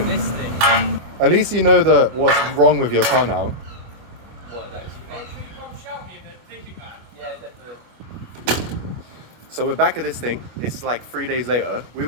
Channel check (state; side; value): late; left; 25 ms